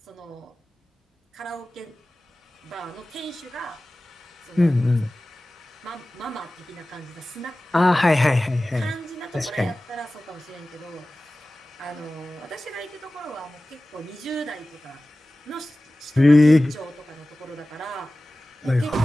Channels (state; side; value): normal; both; correlation 0.97